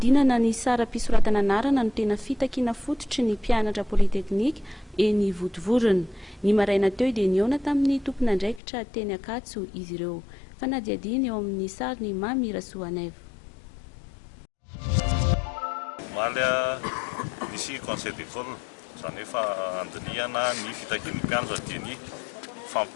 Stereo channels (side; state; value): right; drops out; at 8.6 s